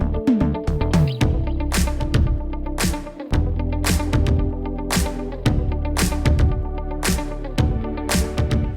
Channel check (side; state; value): both; identical; correlation 1.00